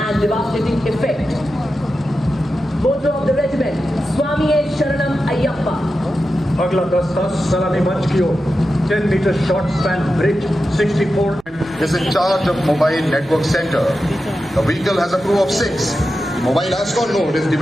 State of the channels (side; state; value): right; noise; rumble, 28 dB below the sound